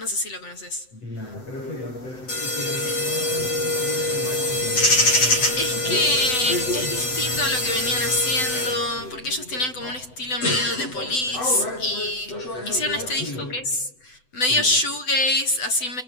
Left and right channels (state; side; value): late; right; 7.9 ms